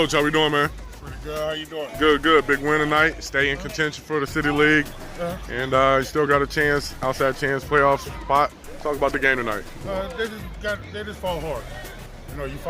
how we doing, man? Pretty good. How you doing? Good, good. Big win tonight. Stay in contention for the City League. And you still got a chance, outside chance, playoff spot. Talk about the game tonight. They just fought hard. You know, you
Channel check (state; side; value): identical; both; correlation 1.00